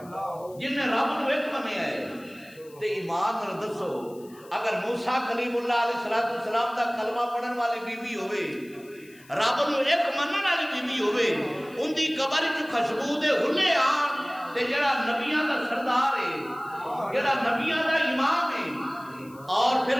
جن نے رب نو ایک منیا ہے۔ تے ایمان نال دسو اگر موسیٰ کلیم اللہ علیہ السلام دا کلمہ پڑھن والی بی بی ہوئے، رب نو ایک منن والی بی بی ہوئے، ان دی قبر وچ خوشبو دے ہلے آن، تے جڑا نبیاں دا سردار ہے، جڑا نبیاں دا امام ہے، اور پھر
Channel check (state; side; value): noise; left; hiss, 26 dB below the sound